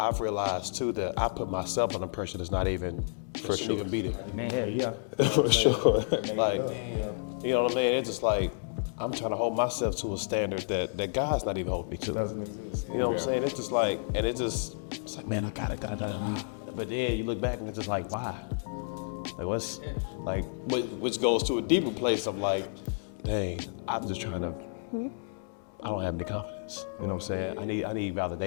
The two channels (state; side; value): silent; right; digital silence